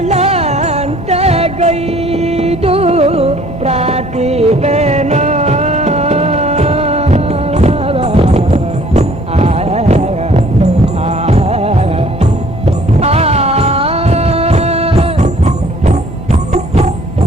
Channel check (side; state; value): both; normal; correlation 0.56